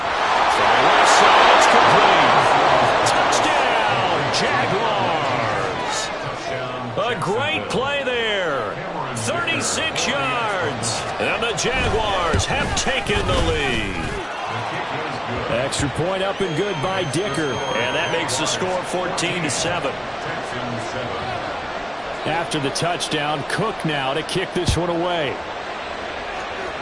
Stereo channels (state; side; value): identical; both; correlation 1.00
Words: the left side, it's complete. Touchdown, Jaguars. A great play there. 36 yards. And the Jaguars have taken the lead. Extra point up and good by Dicker. And that makes the score 14-7. After the touchdown, Cook now to kick this one away.